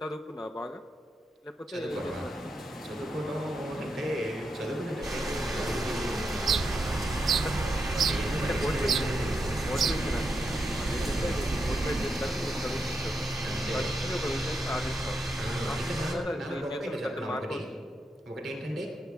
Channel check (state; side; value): normal; both; correlation 0.84